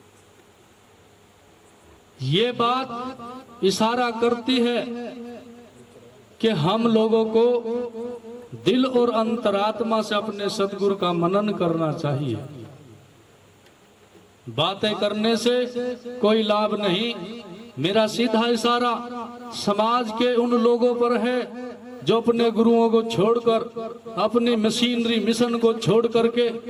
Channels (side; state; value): both; identical; correlation 1.00